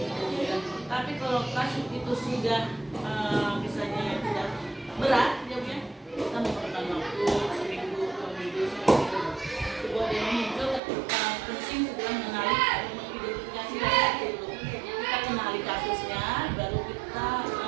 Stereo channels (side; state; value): left; drops out; at 10.8 s